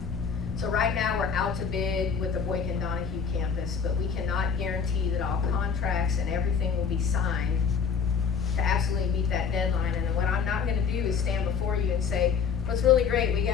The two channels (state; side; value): quieter; right; 6.3 dB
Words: So right now we're out to bid with the Boykin Donahue campus, but we cannot guarantee that all contracts and everything will be signed to absolutely meet that deadline. And what I'm not gonna do is stand before you and say, what's really great, we